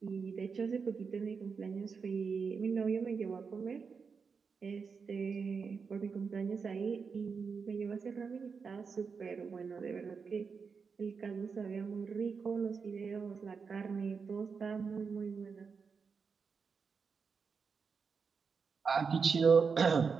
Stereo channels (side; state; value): left; quieter; 5.5 dB